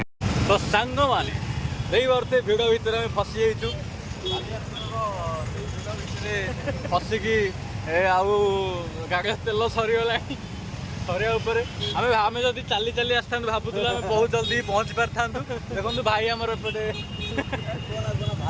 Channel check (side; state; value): both; identical; correlation 1.00